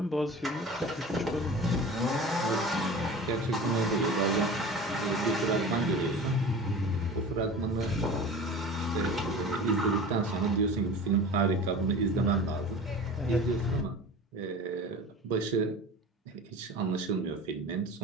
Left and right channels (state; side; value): normal; both; correlation 0.36